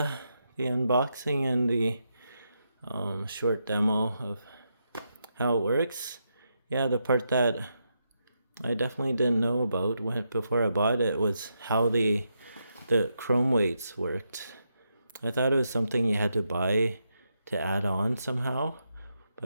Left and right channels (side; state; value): both; inverted; correlation -0.82